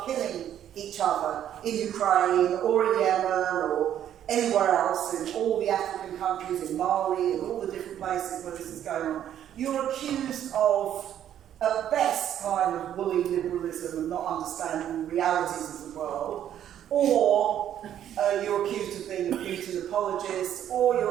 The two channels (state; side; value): quieter; left; 10.6 dB